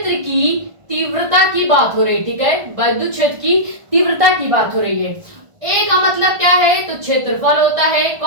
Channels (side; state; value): left; late; 1.5 ms